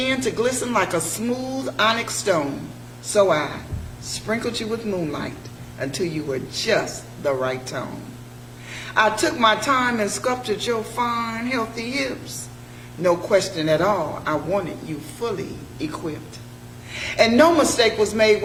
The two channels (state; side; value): identical; both; correlation 1.00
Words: to glisten like a smooth onyx stone. So I sprinkled you with moonlight until you were just the right tone. I took my time and sculpted your fine, healthy hips. No question at all, I wanted you fully equipped. And no mistake was made